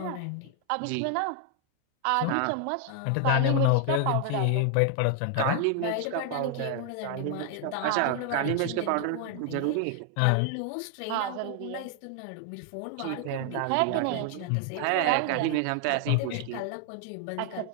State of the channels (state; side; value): different; both; correlation 0.00